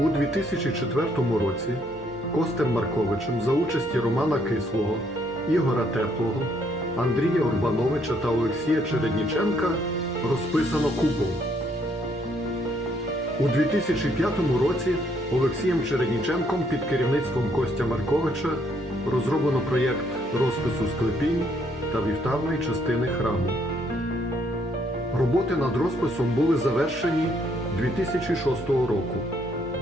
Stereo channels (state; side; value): noise; right; hum, 20 dB below the sound